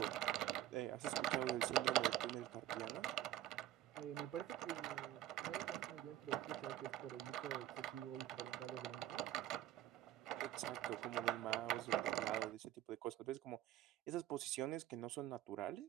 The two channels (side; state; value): left; quieter; 12.9 dB